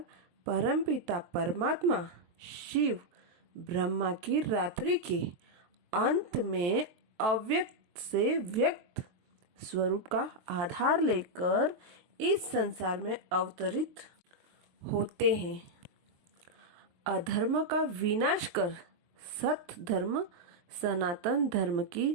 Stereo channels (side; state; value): left; late; 23 ms